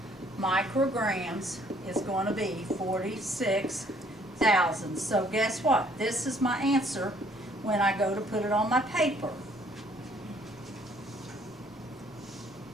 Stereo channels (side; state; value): both; normal; correlation 0.62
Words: micrograms is going to be 46,000. So guess what? This is my answer when I go to put it on my paper.